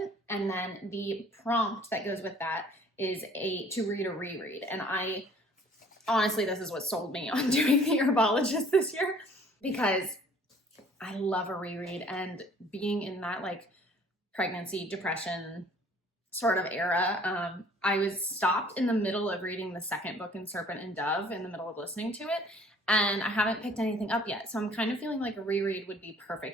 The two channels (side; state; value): both; normal; correlation 0.54